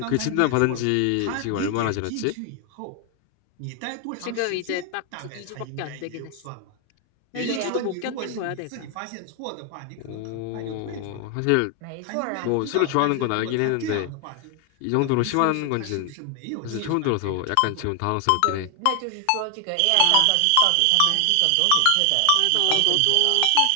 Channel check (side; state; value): both; different; correlation 0.00